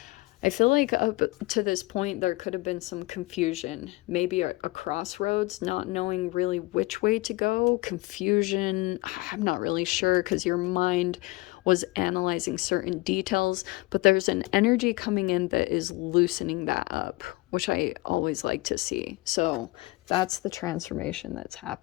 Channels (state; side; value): quieter; right; 22.1 dB